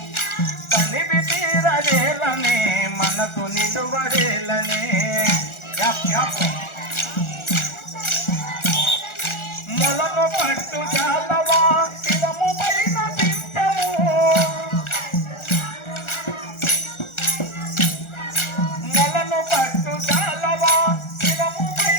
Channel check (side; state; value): right; late; 1.4 ms